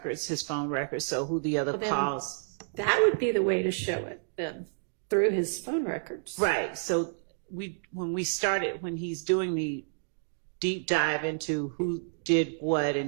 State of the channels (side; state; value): left; silent; digital silence